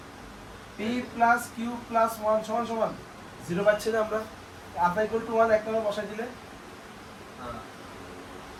p প্লাস q প্লাস 1 সমান সমান 0 পাচ্ছি না আমরা আলফা ইকুয়াল টু 1 এক নম্বর বসাই দিলে হ্যাঁ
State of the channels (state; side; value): identical; both; correlation 1.00